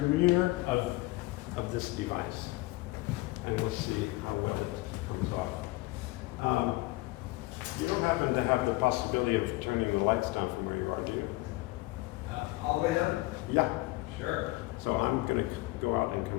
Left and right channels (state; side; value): quieter; right; 20.8 dB